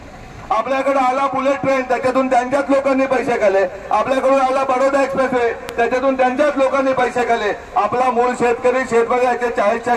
आपल्याकडे आला बुलेट ट्रेन, त्याच्यातून त्यांच्याच लोकांनी पैसे खाल्ले। आपल्याकडून आला बडोदा एक्सप्रेसवे, त्याच्यातून त्यांच्याच लोकांनी पैसे खाल्ले। आपला मूळ शेतकरी शेतकऱ्याचे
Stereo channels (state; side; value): identical; both; correlation 1.00